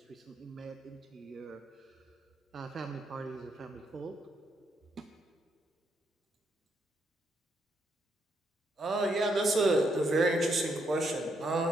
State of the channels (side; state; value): both; normal; correlation 0.77